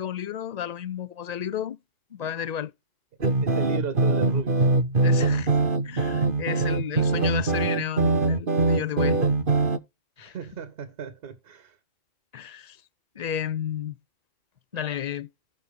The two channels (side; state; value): left; late; 1.9 ms